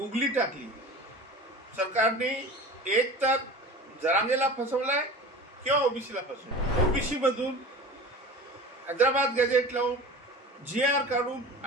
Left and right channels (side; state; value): both; normal; correlation 0.36